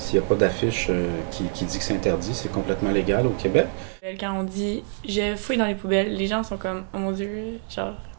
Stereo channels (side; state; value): left; silent; 61 dB below the other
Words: n'y a pas d'affiche qui dit que c'est interdit, c'est complètement légal au Québec. Quand on dit « je fouille dans les poubelles », les gens sont comme « oh mon Dieu, genre,